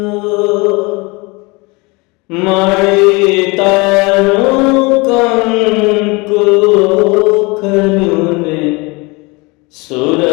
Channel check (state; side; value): quieter; right; 26.4 dB